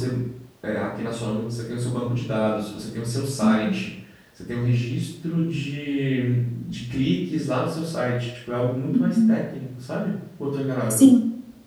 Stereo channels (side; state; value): both; identical; correlation 1.00